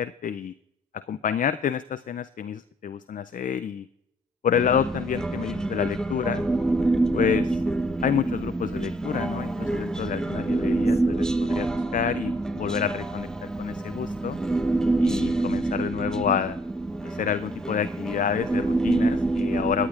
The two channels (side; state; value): both; normal; correlation 0.64